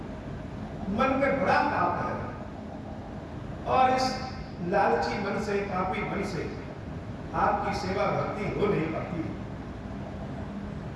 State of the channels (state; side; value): identical; both; correlation 1.00